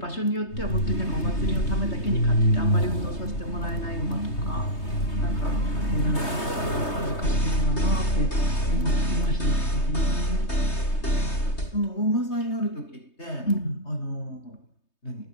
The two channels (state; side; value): late; right; 3.2 ms